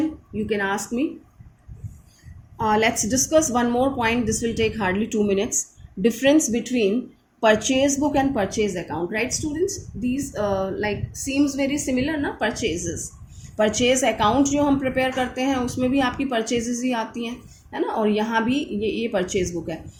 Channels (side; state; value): both; identical; correlation 1.00